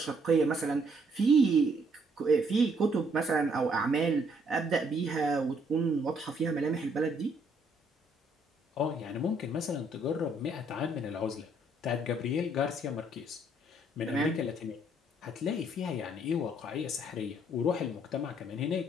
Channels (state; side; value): normal; both; correlation 0.68